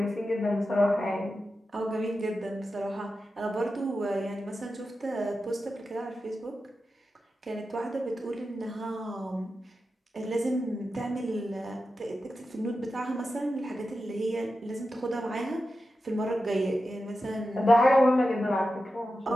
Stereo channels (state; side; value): normal; both; correlation 0.91